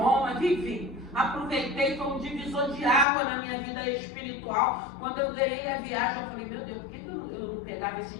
vivi. Aproveitei, foi um divisor de água na minha vida espiritual. Quando eu ganhei a viagem, eu falei, meu Deus, por que eu não pegava esse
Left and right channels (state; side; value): drops out; right; at 3.1 s